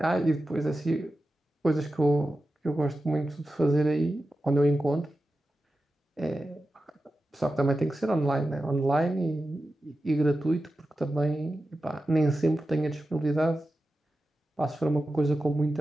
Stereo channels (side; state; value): both; normal; correlation 0.92